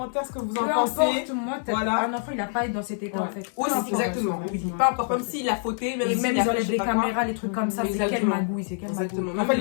ce que vous en Peu pensez. importe, moi, Voilà. un enfant, il a pas à être dans cet état Ouais. en fait. Oui, Peu c'est importe. exactement. ouais, Oui, ouais. pas encore, même s'il a fauté, même Et s'il même a ils fait enlèvent je sais les pas quoi. caméras, les trucs comme ça, c'est quelle Exactement. magouille, c'est quelle magouille. Exactement. En fait,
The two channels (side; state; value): right; silent; digital silence